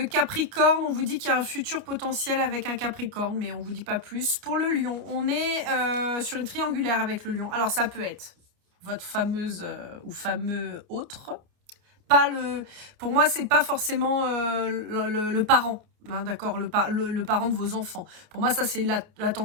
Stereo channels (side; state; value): left; late; 29 ms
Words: Capricorne, on vous dit qu'il y a un futur potentiel avec un Capricorne, mais on vous dit pas plus. Pour le Lion, on est sur une triangulaire avec le Lion. Alors ça peut être votre fameuse ou fameux autre. Pas le, pour moi, c'est pas forcément le parent, hein, d'accord, le parent de vos enfants. Pour moi, ça c'est la